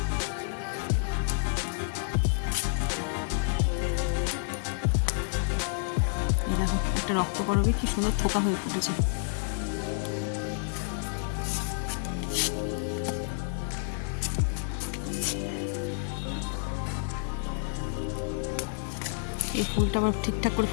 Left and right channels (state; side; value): silent; right; 58 dB below the other